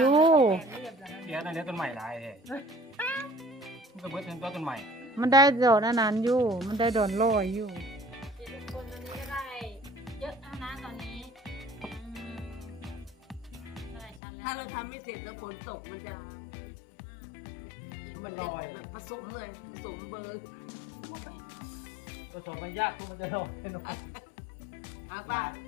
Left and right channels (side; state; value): right; drops out; at 14.2 s